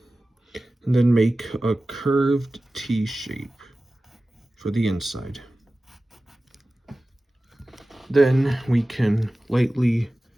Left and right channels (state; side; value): normal; both; correlation 0.96